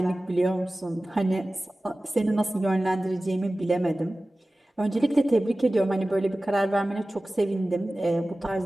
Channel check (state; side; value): normal; both; correlation 0.97